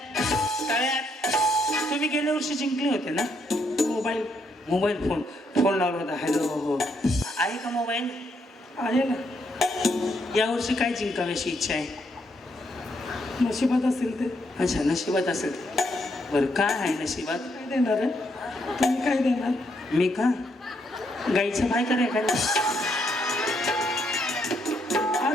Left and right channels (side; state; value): both; normal; correlation 0.75